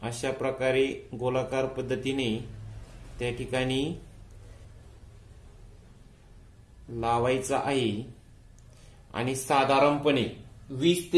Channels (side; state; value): both; identical; correlation 1.00